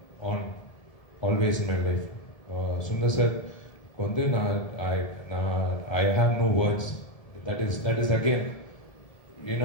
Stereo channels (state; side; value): late; right; 1.7 ms